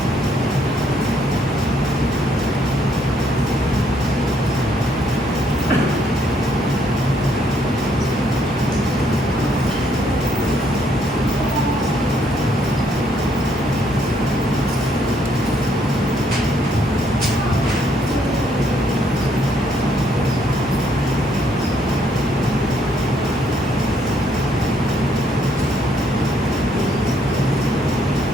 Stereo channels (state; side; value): normal; both; correlation 0.70